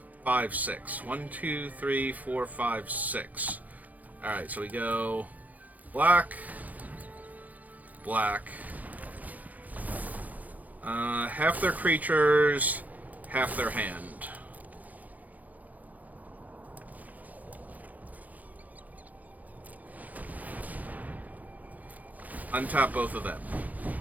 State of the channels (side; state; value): left; late; 0.079 ms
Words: 5, 6. 1, 2, 3, 4, 5, 6. Alright, so we go black, black. Half their creatures, half their hand. Untap both of them.